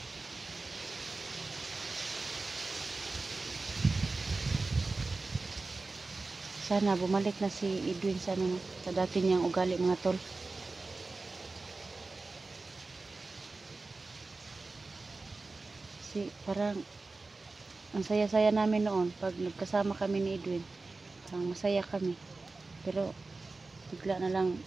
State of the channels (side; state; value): left; quieter; 3.6 dB